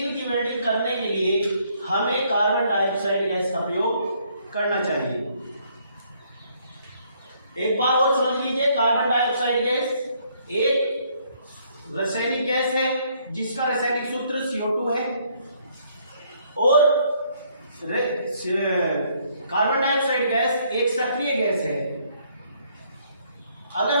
की वेल्डिंग करने के लिए हमें कार्बन डाइऑक्साइड गैस का प्रयोग करना चाहिए। एक बार और समझ लीजिए, कार्बन डाइऑक्साइड गैस एक रासायनिक गैस है जिसका रासायनिक सूत्र CO2 है, और कार्बन डाइऑक्साइड गैस एक सक्रिय गैस है। अगर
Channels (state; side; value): inverted; both; correlation -0.67